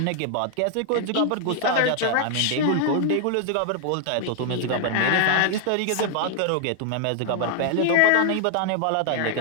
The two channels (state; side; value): different; both; correlation 0.00